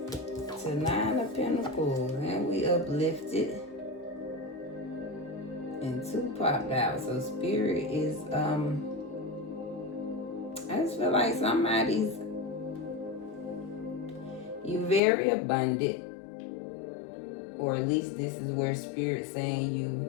To 9 of Pentacles, and we uplifted, and 2 popped out. So Spirit is, I just feel like somebody's, you very abundant, or at least this is where Spirit's saying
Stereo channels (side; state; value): right; drops out; at 15.0 s